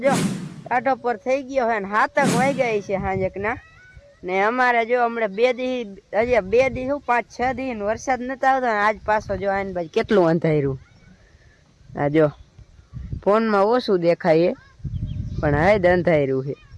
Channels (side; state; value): both; identical; correlation 1.00